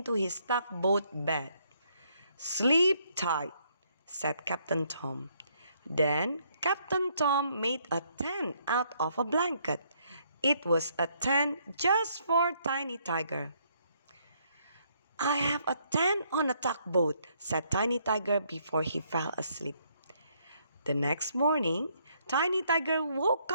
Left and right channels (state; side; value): inverted; both; correlation -0.70